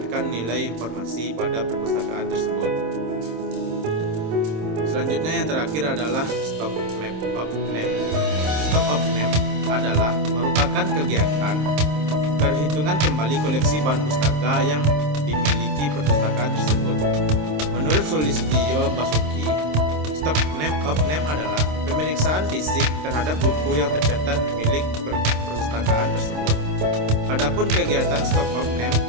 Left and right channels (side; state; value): left; late; 26 ms